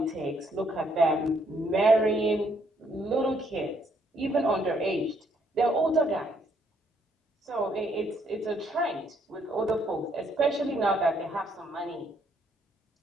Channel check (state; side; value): normal; both; correlation 0.70